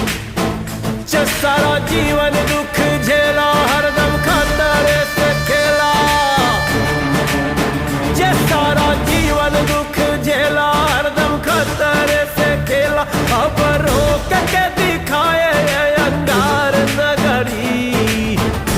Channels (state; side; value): identical; both; correlation 1.00